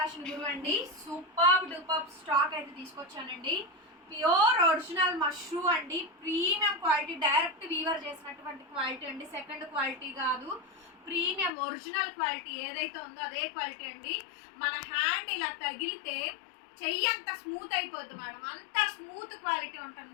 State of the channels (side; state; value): right; drops out; at 11.5 s